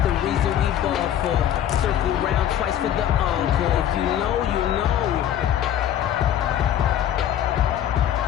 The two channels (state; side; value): quieter; right; 10.6 dB